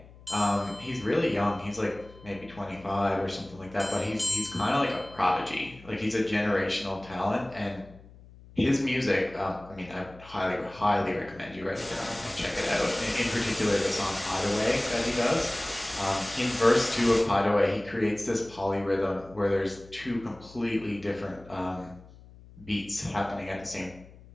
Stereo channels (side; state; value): left; noise; hum, 21 dB below the sound